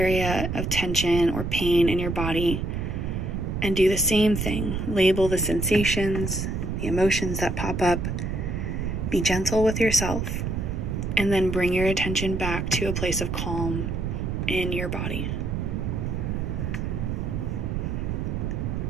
of tension or pain in your body and do the same thing. Label the sensations, the emotions that pop up. Be gentle with yourself. And then bring your attention back to a place of calm in your body.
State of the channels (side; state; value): right; noise; rumble, 2 dB below the sound